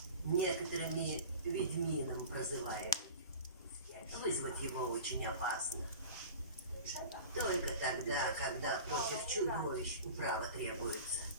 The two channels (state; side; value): inverted; both; correlation -0.36